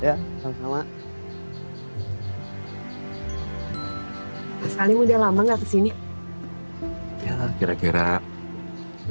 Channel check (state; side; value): inverted; both; correlation -1.00